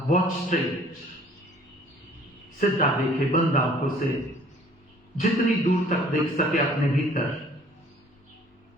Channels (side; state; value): both; normal; correlation 0.55